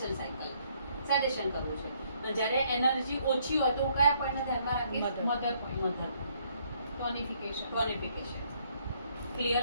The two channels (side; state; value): both; inverted; correlation -0.68